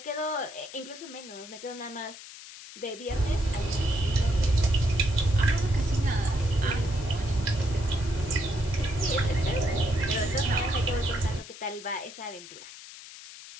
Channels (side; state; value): left; noise; hiss, 15 dB below the sound